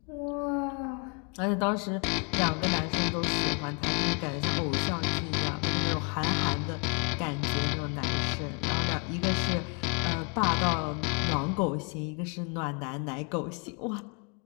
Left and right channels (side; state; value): right; quieter; 36.0 dB